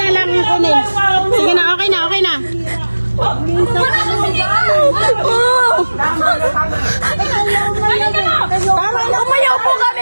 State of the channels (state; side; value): inverted; both; correlation -1.00